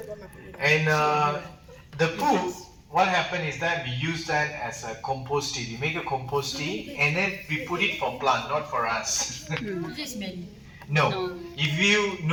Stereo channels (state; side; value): identical; both; correlation 1.00